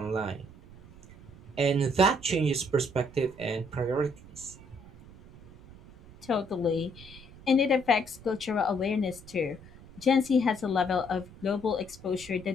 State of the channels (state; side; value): noise; right; rumble, 20 dB below the sound